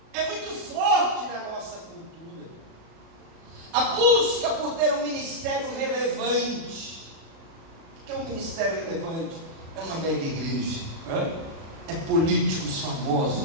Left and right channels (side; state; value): left; late; 36 ms